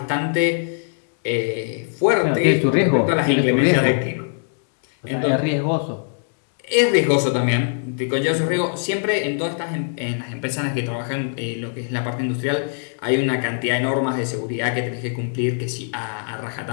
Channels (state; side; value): silent; right; digital silence